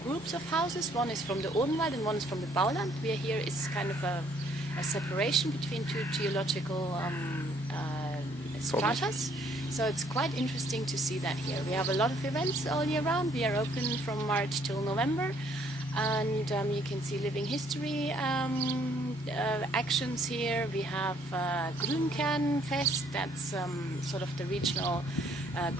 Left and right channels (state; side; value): normal; both; correlation 0.64